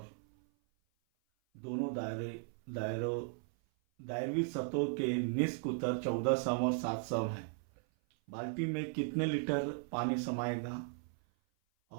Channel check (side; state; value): left; silent; 53 dB below the other